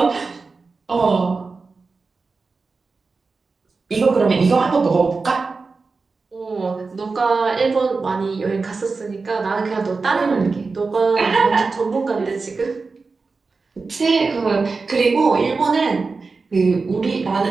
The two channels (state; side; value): quieter; left; 4.2 dB